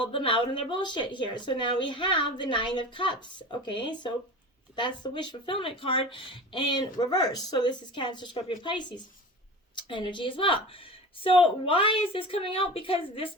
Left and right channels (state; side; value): normal; both; correlation 0.33